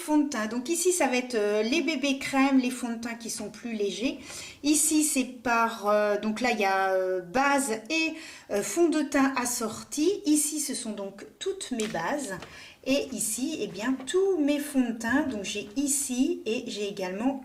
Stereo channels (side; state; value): both; identical; correlation 1.00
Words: de teint. Donc ici, ça va être les bébés crèmes, les fonds de teint qui sont plus légers. Ici, c'est par... donc là, il y a base et fond de teint assorti. Ici, ce sont donc toutes mes bases. Et ici, eh bien, tous mes fonds de teint. Donc j'ai ici et j'ai également